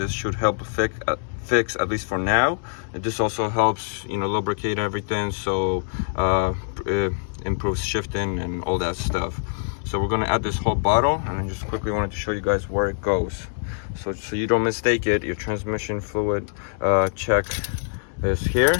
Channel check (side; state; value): right; silent; digital silence